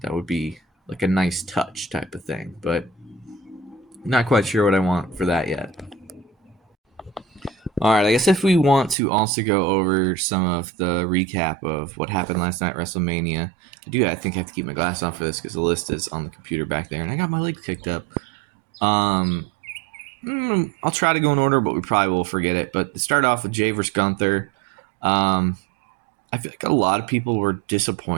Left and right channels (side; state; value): left; drops out; at 9.0 s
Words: That would be like a nice touch type of thing, but not quite sure what I want for that yet. All right, I guess if we want to also go over some of the recap of what happened last night at WrestleMania, I think I have to keep my glass on for this because the list is on the computer back there, and I got my legs kicked up. Um, I'll try to go in order, but we probably will forget it. But to start off with Jay versus Gunther, um, I feel like a lot of people were